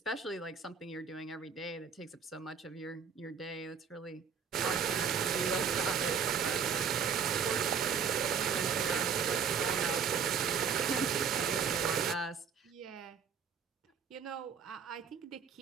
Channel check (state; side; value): quieter; left; 6.7 dB